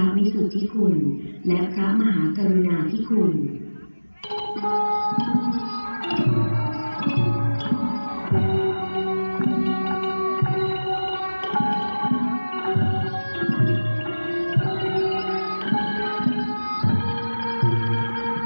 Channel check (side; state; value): both; inverted; correlation -1.00